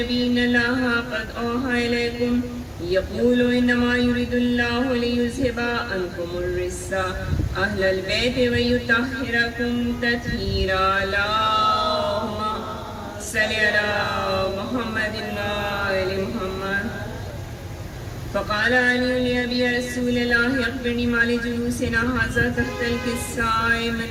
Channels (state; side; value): identical; both; correlation 1.00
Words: إن الله قد أوحى إليكم يقول إنما يريد الله ليذهب عنكم الرجس أهل البيت ويطهركم تطهيرا. اللهم صل على محمد وآل محمد. فقال علي لأبي رسول الله أخبرني ما لجلوسنا هذا تحت الكساء من